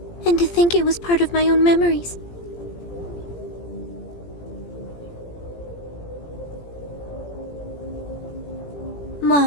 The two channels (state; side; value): late; right; 17 ms